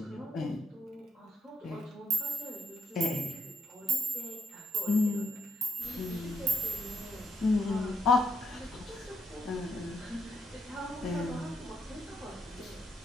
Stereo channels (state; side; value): normal; both; correlation 0.77